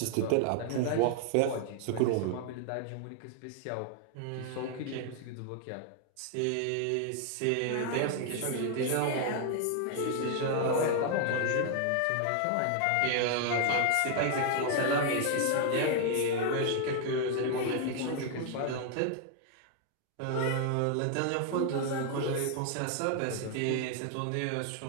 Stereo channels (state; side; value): different; both; correlation 0.00